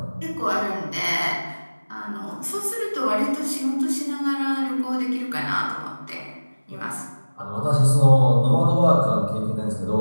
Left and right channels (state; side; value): inverted; both; correlation -1.00